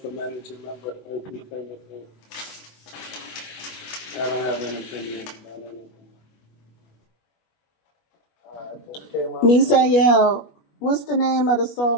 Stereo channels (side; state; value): right; late; 21 ms